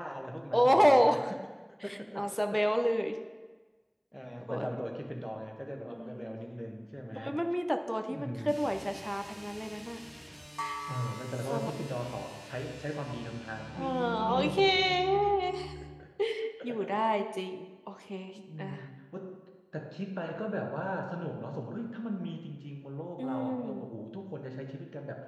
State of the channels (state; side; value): identical; both; correlation 1.00